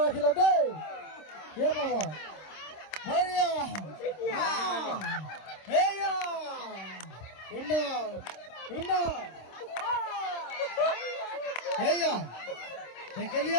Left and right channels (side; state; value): right; late; 26 ms